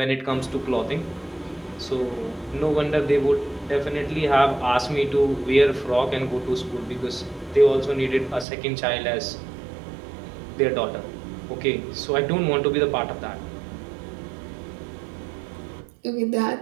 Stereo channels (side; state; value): left; drops out; at 8.5 s